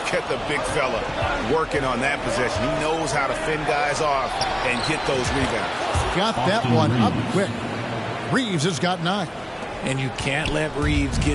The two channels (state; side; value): identical; both; correlation 1.00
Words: at the big fella working on that possession. He knows how to fend guys off and get those rebounds. Got that one up quick. Reeves has got 9. And you can't let Reeves